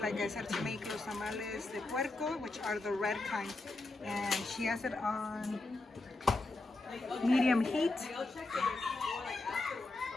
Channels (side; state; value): right; quieter; 3.1 dB